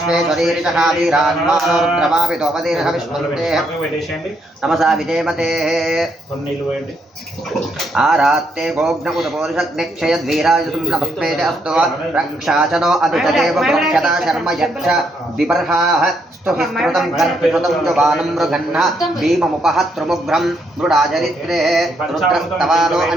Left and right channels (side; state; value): both; normal; correlation 0.75